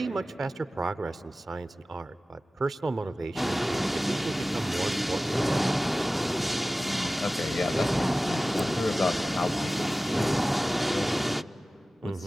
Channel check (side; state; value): both; normal; correlation 0.97